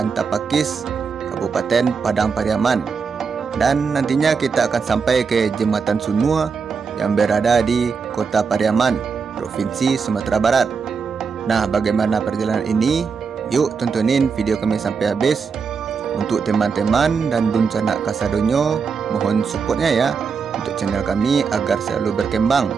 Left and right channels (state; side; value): quieter; left; 5.6 dB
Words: Tapakis, Kabupaten Padang Pariaman. Dan nantinya kita akan sampai ke Jembatan Sunua yang berada di Kota Pariaman, Provinsi Sumatera Barat. Nah, bagaimana perjalanan ini? Yuk tontonin video kami sampai habis. Untuk teman-teman dan dun canak kasadonyo, mohon supportnya ya untuk channel kami agar selalu berkembang